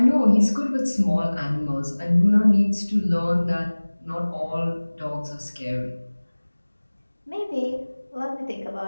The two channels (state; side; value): inverted; both; correlation -1.00